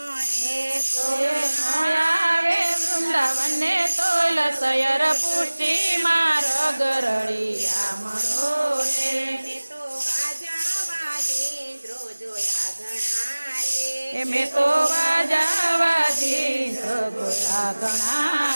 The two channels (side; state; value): both; inverted; correlation -1.00